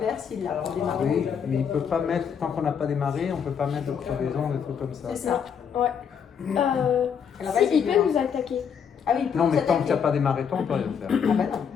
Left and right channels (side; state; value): right; quieter; 7.3 dB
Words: s'il l'a pour démarrer. Oui, mais il peut pas mettre, tant qu'on n'a pas démarré, on peut pas mettre de crevaison, des trucs comme ça. C'est ça. Ouais. Alors, Si, vas-y, il peut nous attaquer. Ah oui, il peut Non, nous mais tant que tu n'as attaquer. pas démarré, toi, on peut rien faire. Ah bah